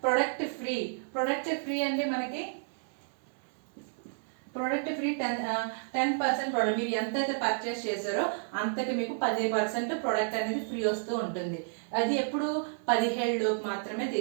ప్రొడక్ట్ ఫ్రీ అండి. మనకి ప్రోడక్ట్ ఫ్రీ 10% ప్రోడక్ట్ మీరు ఎంతైతే పర్చేస్ చేశారో అంతకి మీకు 10% ప్రోడక్ట్ అనేది ఫ్రీ వస్తూ ఉంటుంది. అది ఎప్పుడు 17 లోపు మాత్రమే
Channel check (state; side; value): silent; left; 56 dB below the other